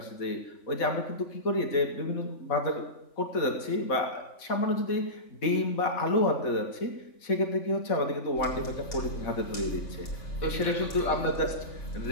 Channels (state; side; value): late; right; 3.5 ms